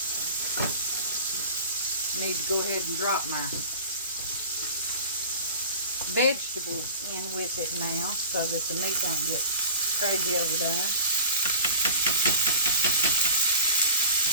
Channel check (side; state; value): both; inverted; correlation -0.40